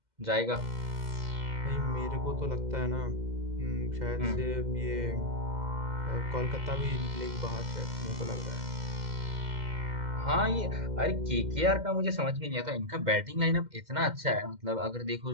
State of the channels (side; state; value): left; late; 2.1 ms